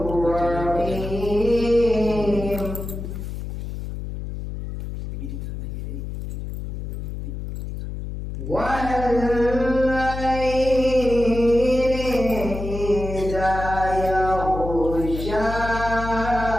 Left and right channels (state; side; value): noise; left; hum, 7 dB below the sound